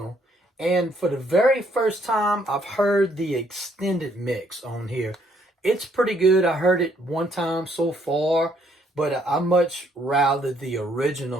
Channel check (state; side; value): normal; both; correlation 0.68